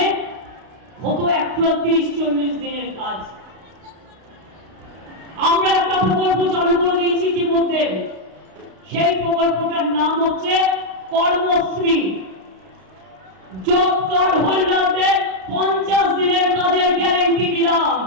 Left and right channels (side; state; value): left; late; 32 ms